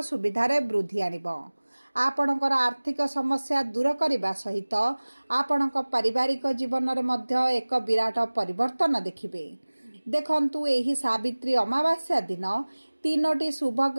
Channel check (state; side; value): inverted; both; correlation -1.00